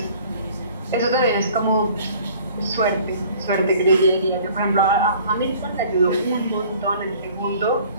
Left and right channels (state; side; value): inverted; both; correlation -0.51